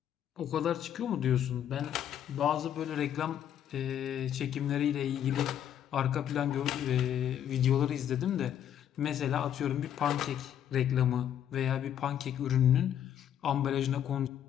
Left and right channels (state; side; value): quieter; right; 10.0 dB